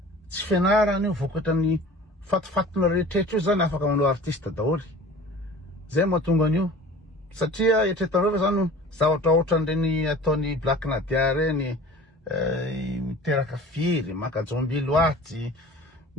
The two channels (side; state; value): both; normal; correlation 0.42